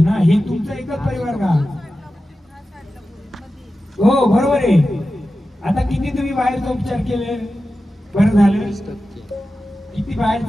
ना हे तुमचं एकच परिवार का हो बरोबर आहे आता किती तुम्ही बाहेरचा उपचार केले बरं झालं किती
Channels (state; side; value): normal; both; correlation 0.93